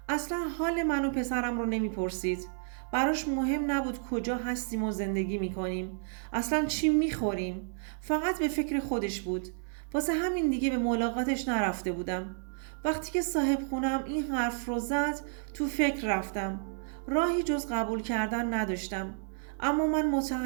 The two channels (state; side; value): silent; left; 57 dB below the other